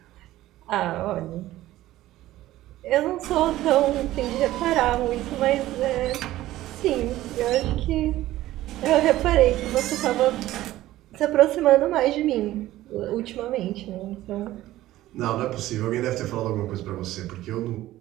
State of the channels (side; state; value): left; quieter; 15.4 dB